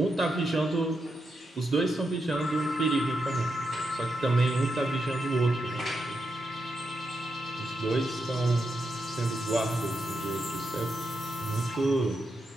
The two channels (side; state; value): both; normal; correlation 0.84